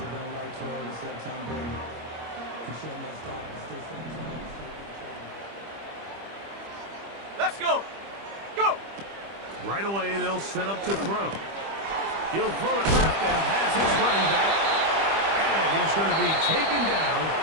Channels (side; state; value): left; late; 25 ms